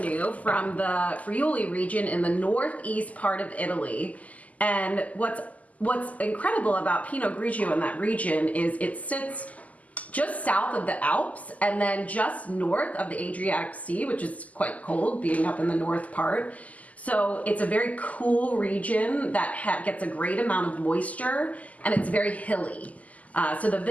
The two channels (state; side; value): late; right; 0.074 ms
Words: new from the Friuli region in the northeast part of Italy. And what's incredible about Pinot Grigio in that region is it sits just south of the Alps and then just north of the Adriatic Sea, which is quite cold being up in the north part. So it's a very cool region that gets a great amount of moisture, and it's very hilly. So the